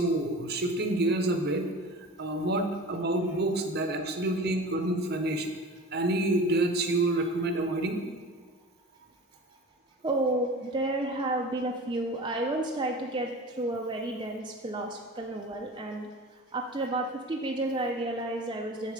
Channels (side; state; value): both; normal; correlation 0.37